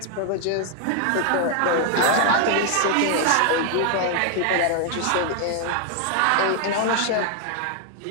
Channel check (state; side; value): different; both; correlation 0.00